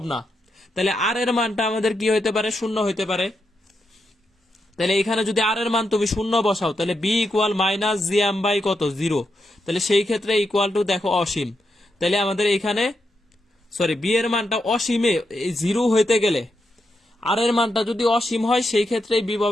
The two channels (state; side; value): normal; both; correlation 0.84